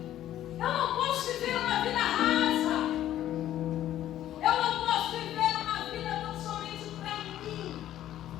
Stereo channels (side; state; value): right; quieter; 12.4 dB